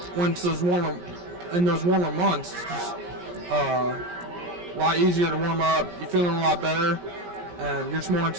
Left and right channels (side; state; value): left; late; 17 ms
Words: when it's those warmer months, it's just a lot easier to warm up. You're feeling a lot better, and you're just more